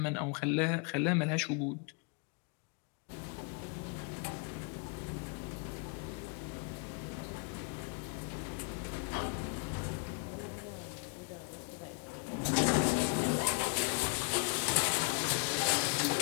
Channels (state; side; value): quieter; right; 37.0 dB